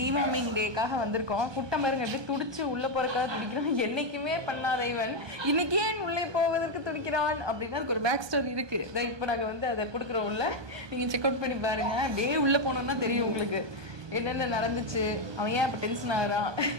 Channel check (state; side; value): late; left; 1.2 ms